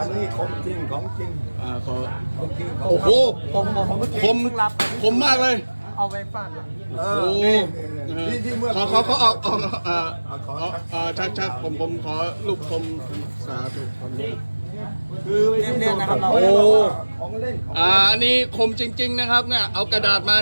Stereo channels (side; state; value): both; inverted; correlation -1.00